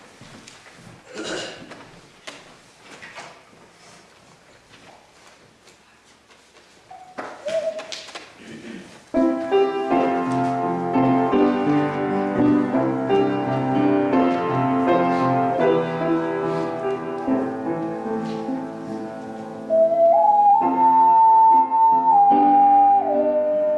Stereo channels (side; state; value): both; identical; correlation 1.00